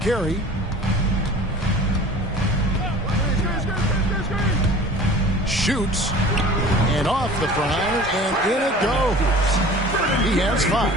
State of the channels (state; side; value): normal; both; correlation 0.43